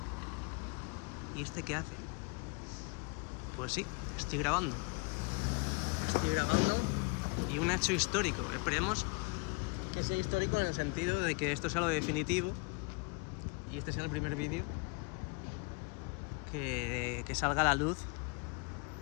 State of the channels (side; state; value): right; quieter; 30.5 dB